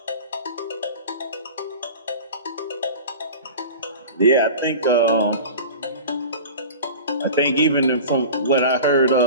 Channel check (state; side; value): inverted; both; correlation -0.35